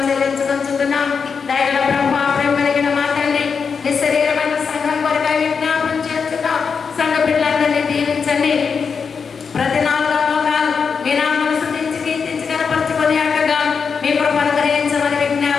చెల్లించుకుంటున్నాం. దయగల ప్రభువా, ప్రేమ కలిగిన మా తండ్రి, నీ శరీరమైన సంఘం కొరకై విజ్ఞాపనం చేస్తున్నాం. సంఘ బిడ్డలందరినీ దీవించండి. ప్రతి 4 లోకాలు మీ నామమును స్తుతించి కీర్తించి కనపరచుకొని అక్కగా మీ కృపను గ్రహించమని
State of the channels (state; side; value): quieter; right; 5.8 dB